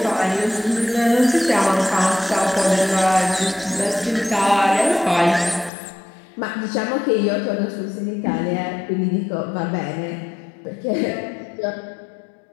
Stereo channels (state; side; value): drops out; right; at 5.7 s